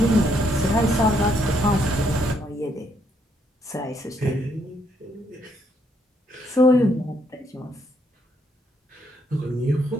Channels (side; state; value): both; normal; correlation 0.73